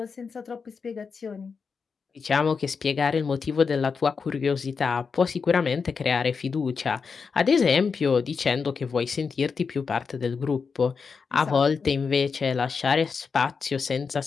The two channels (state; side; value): quieter; right; 5.4 dB